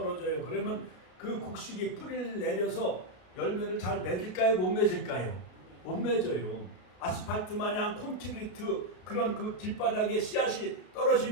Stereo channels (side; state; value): right; late; 33 ms